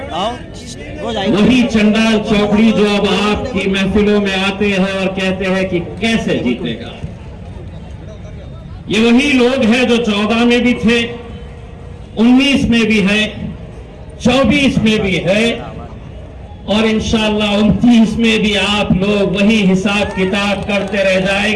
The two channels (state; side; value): identical; both; correlation 1.00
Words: वही चंडाल चौकड़ी जो अब आपकी महफिलों में आते हैं और कहते हैं कि कैसे जीतेगा, ये वही लोग हैं जो 14 में भी थे, 19 में भी है, 24 में भी है और इंशाअल्लाह 29 में भी आप लोग वही हिसाब किताब करते रह